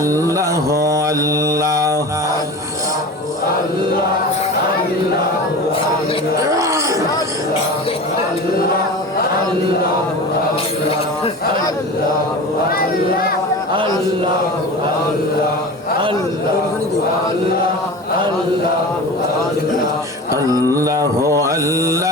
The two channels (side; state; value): both; normal; correlation 0.32